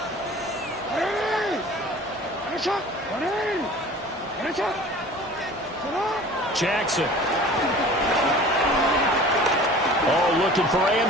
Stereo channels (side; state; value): left; noise; hum, 29 dB below the sound